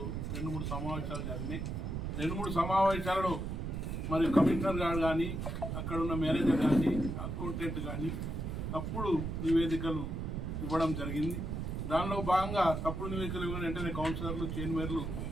2-3 సమావేశాలు జరిగినాయి. 2-3 సమావేశాలలో మరి కమిషనర్ గారు కానీ, అక్కడ ఉన్న మేనేజర్ కానీ, అకౌంటెంట్ కానీ తప్పుడు నివేదికలు ఇవ్వడం జరిగింది. దానిలో భాగంగా తప్పుడు నివేదికలు ఇవ్వడం వెంటనే కౌన్సిలర్లు, చైర్మన్లు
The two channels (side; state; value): right; noise; rumble, 3 dB below the sound